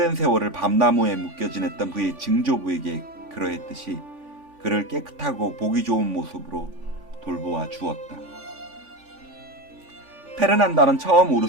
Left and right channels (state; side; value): late; left; 3.5 ms